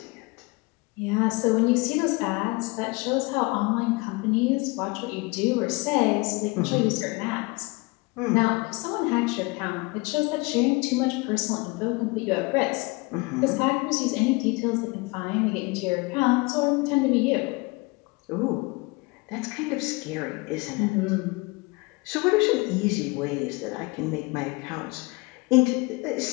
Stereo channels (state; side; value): quieter; right; 26.0 dB